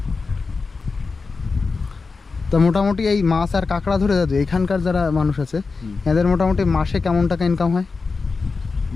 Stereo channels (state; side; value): quieter; right; 4.4 dB